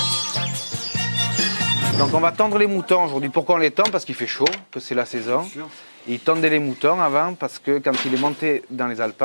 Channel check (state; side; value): inverted; both; correlation -1.00